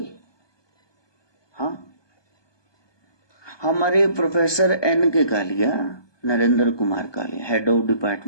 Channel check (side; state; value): right; late; 1.2 ms